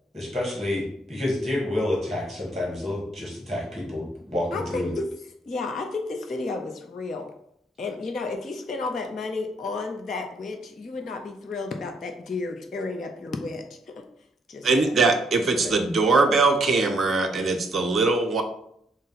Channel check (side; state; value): both; normal; correlation 0.70